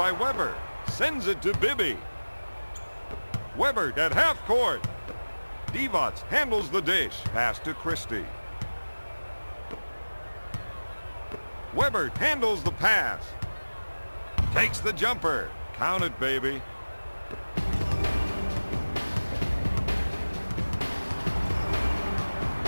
Weber. Sends it to Bibby. Weber at half court. Divac handles the dish. Pass to Christie. Weber handles the pass. Takes the jumper. Count it, baby.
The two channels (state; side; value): inverted; both; correlation -1.00